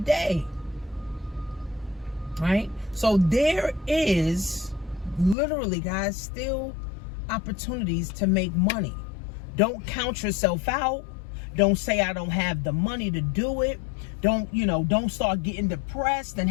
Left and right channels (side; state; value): right; drops out; at 5.4 s